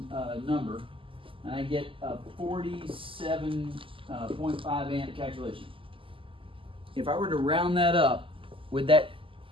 number, and I get a 47.5 amp calculation. If I were to round that up, would that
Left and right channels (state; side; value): late; left; 0.25 ms